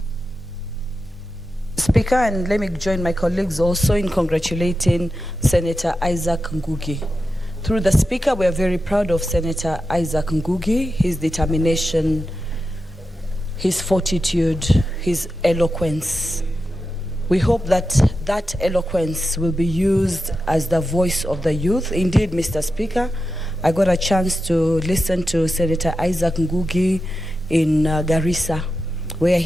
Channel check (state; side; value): normal; both; correlation 0.90